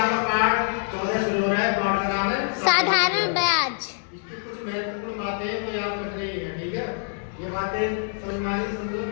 पाठ 14 शुरू हो रहा है। पाठ का नाम है साधारण ब्याज। इसकी कुछ महत्वपूर्ण बातें तो याद रखनी है, ठीक है। ये बातें समझ में आएगी, समझो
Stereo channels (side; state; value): right; silent; 62 dB below the other